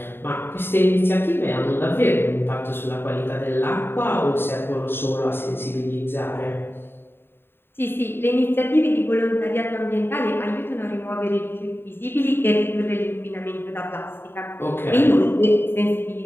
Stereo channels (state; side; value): late; right; 0.11 ms